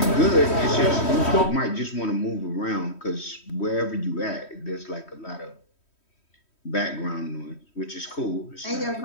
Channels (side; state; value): right; late; 3.1 ms